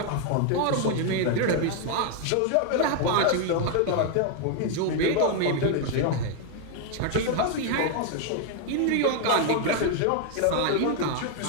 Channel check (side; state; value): both; different; correlation 0.01